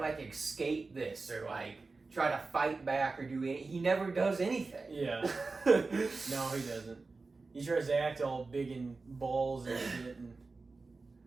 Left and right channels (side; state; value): left; quieter; 3.9 dB